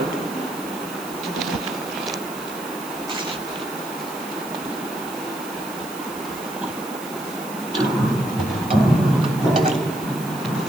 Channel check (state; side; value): noise; right; hiss, 14 dB below the sound